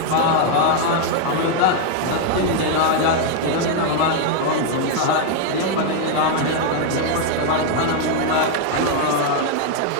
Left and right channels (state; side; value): different; both; correlation 0.00